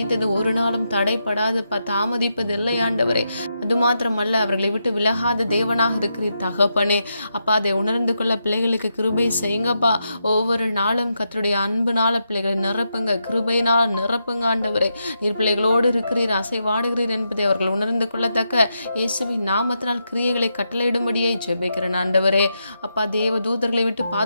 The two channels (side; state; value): both; inverted; correlation -0.84